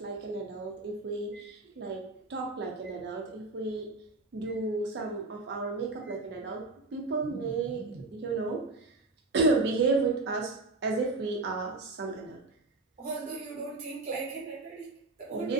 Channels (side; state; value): left; quieter; 3.3 dB